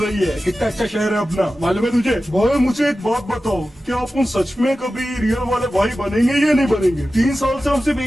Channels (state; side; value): normal; both; correlation 0.94